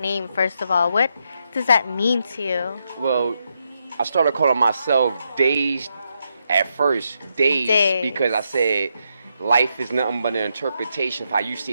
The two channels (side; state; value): both; inverted; correlation -0.82